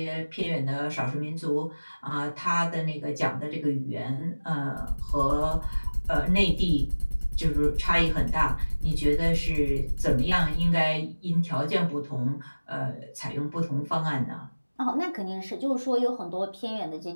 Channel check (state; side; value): inverted; both; correlation -1.00